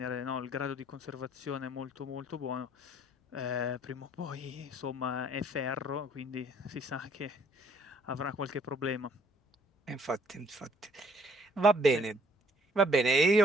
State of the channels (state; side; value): normal; both; correlation 0.62